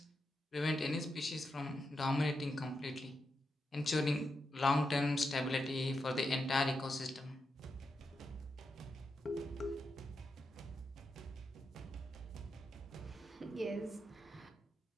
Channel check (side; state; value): both; normal; correlation 0.86